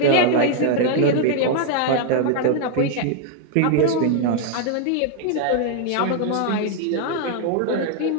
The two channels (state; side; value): different; both; correlation 0.00